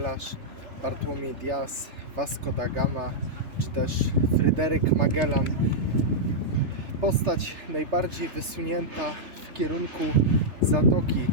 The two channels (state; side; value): late; left; 3.4 ms